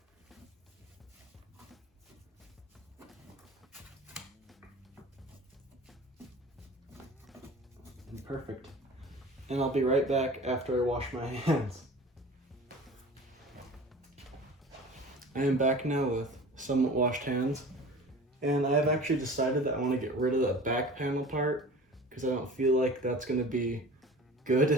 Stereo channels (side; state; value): both; normal; correlation 0.40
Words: perfect. And I'll be right back after I wash my hands. I am back now with somewhat washed hands. And I have actually decided that I want to get rid of the back panel part because I don't feel like that's going to be good